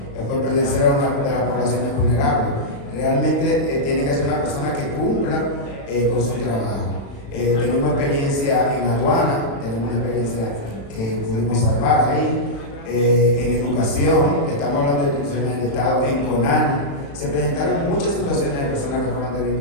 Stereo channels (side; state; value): right; late; 35 ms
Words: por pertenecer a una de las poblaciones vulnerables. Realmente tiene que ser una persona que cumpla con su trabajo. Tenemos experiencia en aduana, tenemos una experiencia que pudimos salvar ahí. En educación, estamos hablando de instituciones del Estado, en CONANI, se presentaron muchas situaciones de personas que fueron